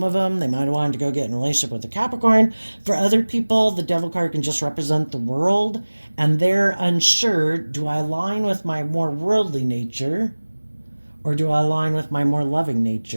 of them, they might have wanted to go get in a relationship with a Capricorn. For other people, the devil card can just represent the world, and they're unsure, do I align with my more worldly nature, or do I align with my more loving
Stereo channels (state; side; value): inverted; both; correlation -1.00